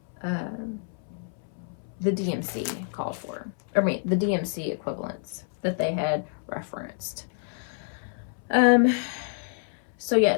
the DMC called for. I mean, the DMC equivalents that they had referenced. So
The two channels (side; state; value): right; silent; 59 dB below the other